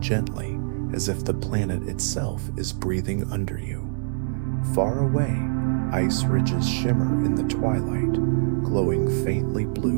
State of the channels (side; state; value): left; silent; digital silence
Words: as if the planet itself is breathing under you. Far away, ice ridges shimmer in the twilight, glowing faintly